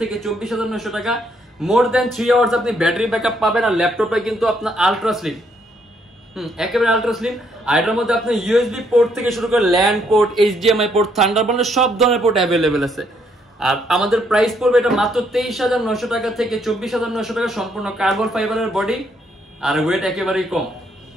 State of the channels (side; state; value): both; normal; correlation 0.71